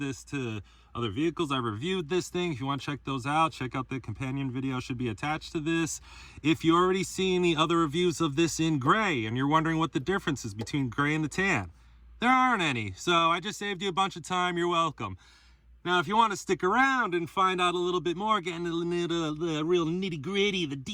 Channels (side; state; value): both; identical; correlation 1.00